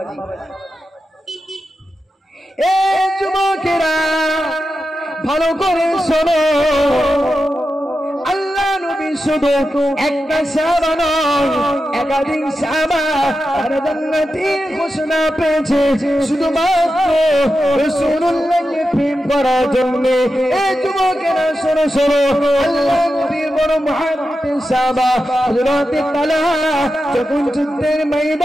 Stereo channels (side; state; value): both; normal; correlation 0.90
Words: এ যুবকেরা ভালো করে শোনো, আল্লাহ নবী শুধু একটা সাহাবা নয়, একাধিক সাহাবা আর জান্নাতের ঘোষণা পেয়েছে শুধুমাত্র রাসূলুল্লাহকে প্রেম করার জন্য। এই যুবকেরা শোনো শোনো, আল্লাহ নবীর বড় মুহাব্বতের সাহাবা হযরত তালহা যখন যুদ্ধের